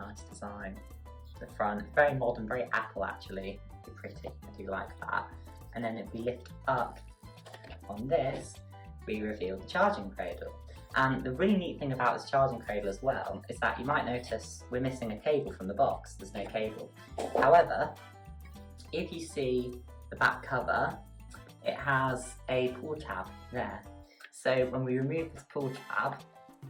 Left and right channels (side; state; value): both; identical; correlation 1.00